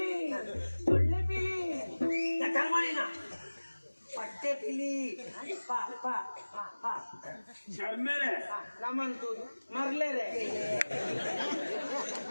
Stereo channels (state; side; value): inverted; both; correlation -1.00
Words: ಸೊಳ್ಳೆ ಪಿಲಿ ಪಟ್ಟೆ ಪಿಲಿ ಶರ್ಮೇಲೆ ನಮ್ಮಂತೂದು ಮರ್ಲೇರೆ